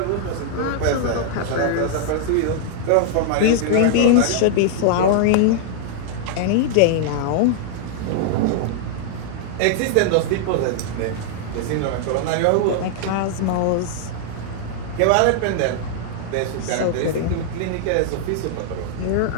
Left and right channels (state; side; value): different; both; correlation -0.01